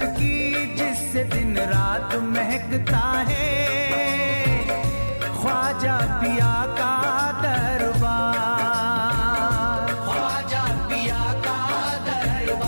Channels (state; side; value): inverted; both; correlation -1.00